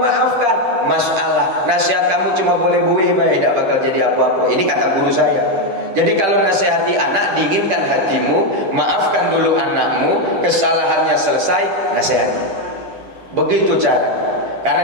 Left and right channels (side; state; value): left; late; 10 ms